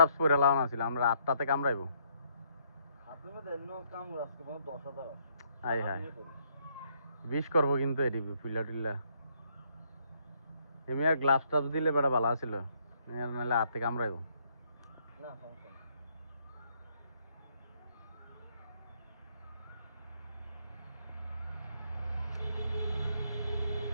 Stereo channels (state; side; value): inverted; both; correlation -0.70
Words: পরে লাগানো ছিল, আমরা 8টাতে কামড়াইবো। হাতের মধ্যে এন্ন কামড় আজকে 10,000 আছে। হাই হাই বিষ করবো কিন্তু এটি ফুলা টুল্লা এমনি আর গ্লাভস ট্রাভস দিলে বেটা ভালো ছিল, নাহলে হাতে কামড়াইবো। না সমস্যা নেই।